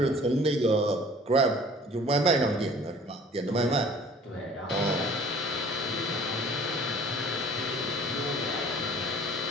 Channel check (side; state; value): both; normal; correlation 0.49